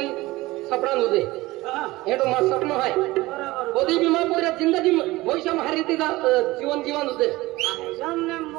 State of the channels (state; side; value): quieter; left; 19.6 dB